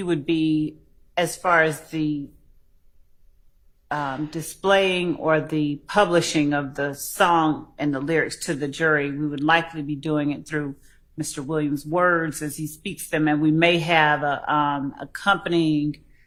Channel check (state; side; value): identical; both; correlation 1.00